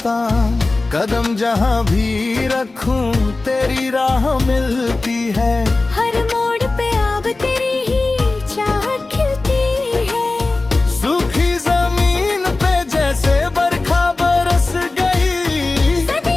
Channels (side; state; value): right; quieter; 3.3 dB